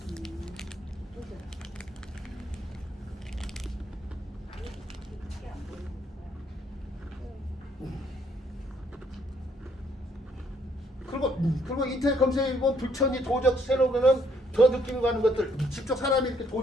그리고 인터넷 검색해 보면 불천이 도적 세로면은 더 느낌이 가는 것들 직접 사람이 이렇게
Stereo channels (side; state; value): both; normal; correlation 0.68